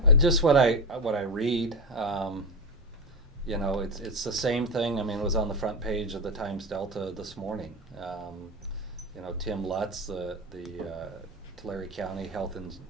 Just what I read, it's the same thing. I mean, it was on the front page of the Times Delta this morning. Tim Lutz, the Tulare County Health and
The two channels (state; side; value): normal; both; correlation 0.17